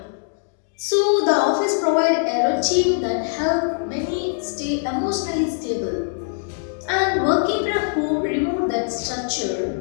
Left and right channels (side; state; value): right; silent; digital silence